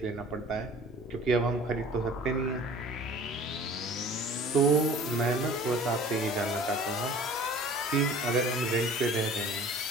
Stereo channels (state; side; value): normal; both; correlation 0.46